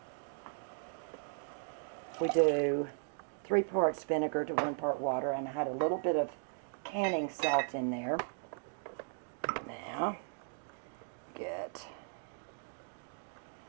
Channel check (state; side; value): silent; left; digital silence